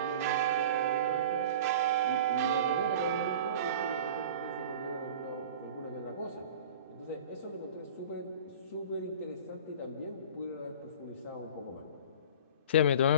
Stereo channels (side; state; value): both; inverted; correlation -0.39